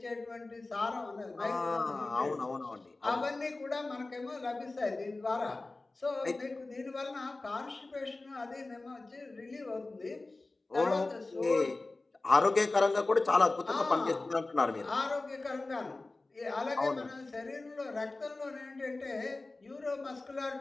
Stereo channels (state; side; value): quieter; right; 3.2 dB